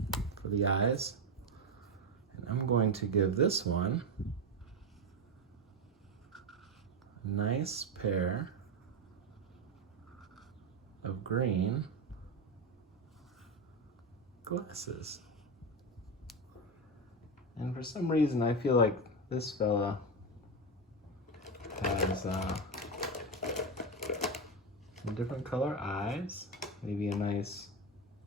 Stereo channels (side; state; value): both; normal; correlation 0.14